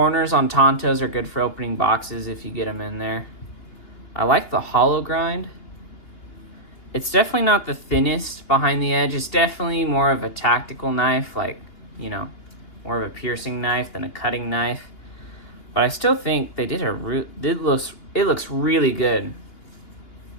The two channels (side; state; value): right; late; 2.8 ms